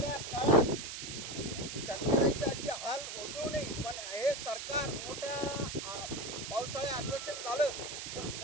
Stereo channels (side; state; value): right; noise; hiss, 7 dB below the sound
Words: काळात शेतकऱ्याची अशी हाल होऊ देऊ नये। पण हे सरकार मोठ्या पावसाळे अधिवेशन झालं तर